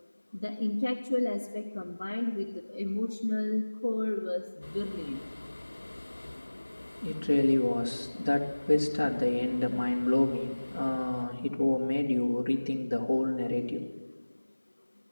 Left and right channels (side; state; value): both; inverted; correlation -1.00